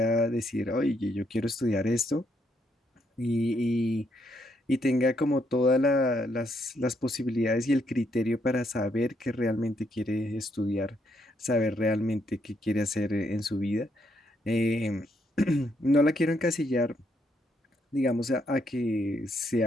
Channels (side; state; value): both; normal; correlation 0.75